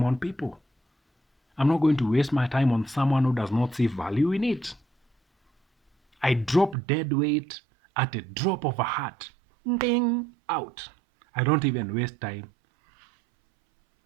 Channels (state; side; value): drops out; left; at 6.8 s